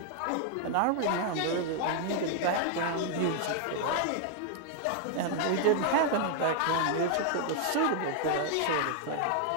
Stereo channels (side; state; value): both; different; correlation 0.00